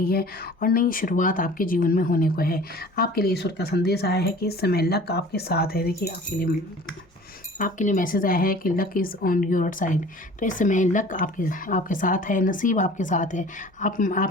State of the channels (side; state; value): both; normal; correlation 0.45